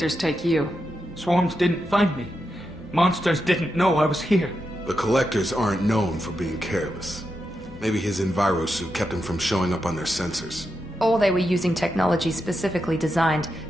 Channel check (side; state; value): both; normal; correlation 0.86